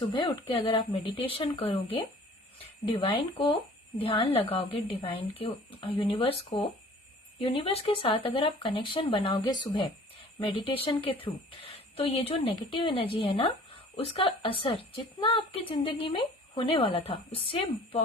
उठ के अगर आप मेडिटेशन करोगे, डिवाइन को ध्यान लगाओगे, डिवाइन के यूनिवर्स के साथ अगर आप कनेक्शन बनाओगे सुबह मेडिटेशन के थ्रू, तो ये जो नेगेटिव एनर्जी है ना, उसका असर जितना आपकी जिंदगी में होने वाला था उससे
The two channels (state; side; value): normal; both; correlation 0.49